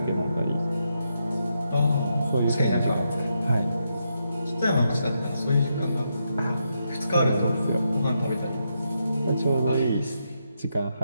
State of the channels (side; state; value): both; inverted; correlation -0.82